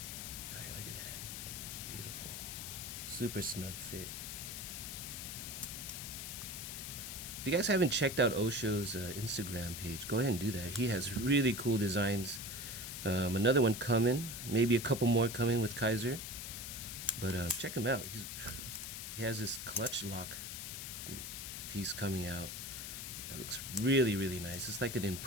All right, look at that. Beautiful. Super snug fit. If you guys haven't checked out O.SHO's Instagram page, go ahead and do that. He has really cool designs. Another one coming, maybe a couple more coming with Kizer. But check him out. He has this clutch lock piece coming out that looks really, really nice. It's like an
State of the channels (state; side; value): noise; left; hiss, 7 dB below the sound